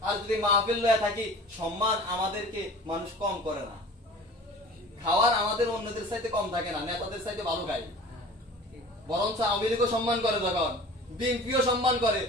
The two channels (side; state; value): both; normal; correlation 0.42